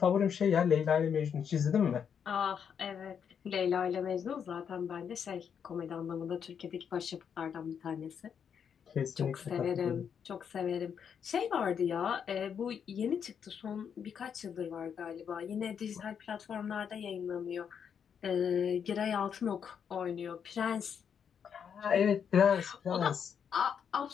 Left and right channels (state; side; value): quieter; right; 7.5 dB